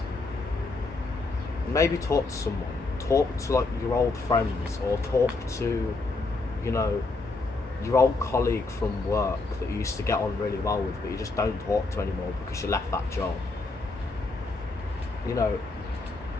maybe talk to someone. Talk to like your old friends, or talk to, you know, your old colleague from work that you used to get on really well with, but you just don't talk to anymore because you left that job. You know,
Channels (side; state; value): right; quieter; 3.5 dB